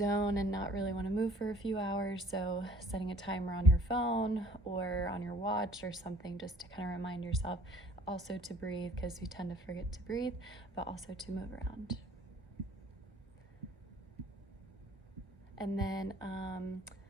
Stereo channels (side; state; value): both; normal; correlation 0.53